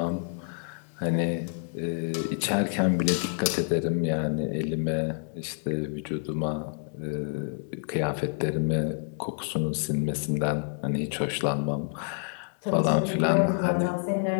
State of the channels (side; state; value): right; silent; 59 dB below the other